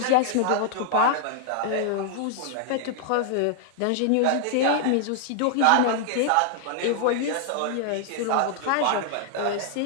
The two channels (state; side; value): different; both; correlation -0.01